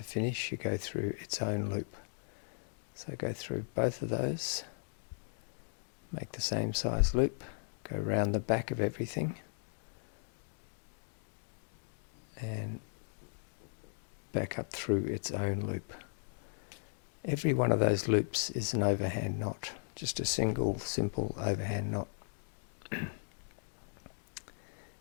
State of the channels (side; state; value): right; silent; digital silence